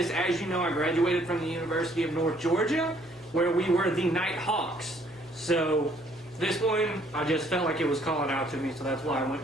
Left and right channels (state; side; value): normal; both; correlation 0.64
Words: As you know, I graduated from the University of North Georgia, where we were the Nighthawks. So this one, I just felt like it was calling out to me, so that's why I